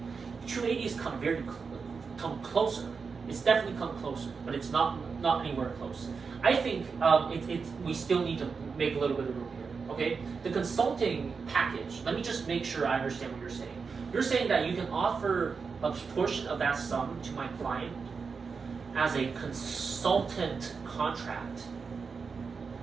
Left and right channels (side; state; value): left; quieter; 5.2 dB